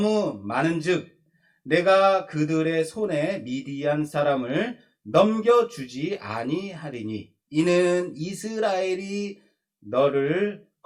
많은즉 내가 그들의 손에 미디안 사람을 넘겨주지 아니하리니 이는 이스라엘이 너를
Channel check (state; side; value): identical; both; correlation 1.00